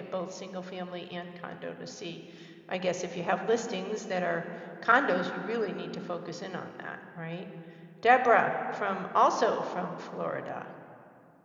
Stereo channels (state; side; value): identical; both; correlation 1.00